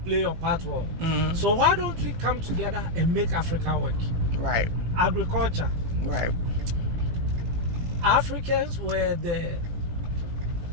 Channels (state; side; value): late; left; 18 ms